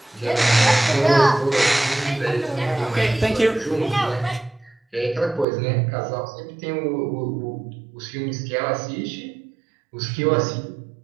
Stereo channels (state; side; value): drops out; left; at 5.5 s